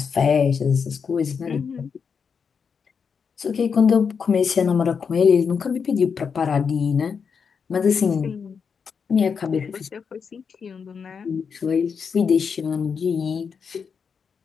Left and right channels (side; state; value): right; quieter; 6.2 dB